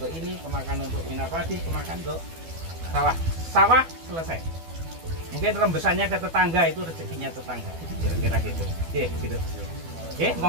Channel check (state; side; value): late; left; 12 ms